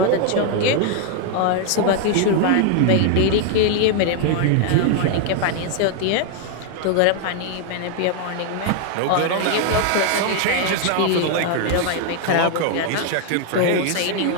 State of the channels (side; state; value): both; different; correlation 0.00